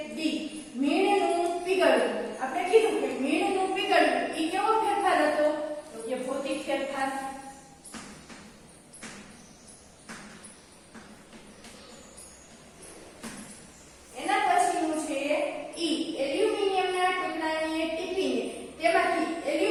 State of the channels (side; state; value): both; identical; correlation 1.00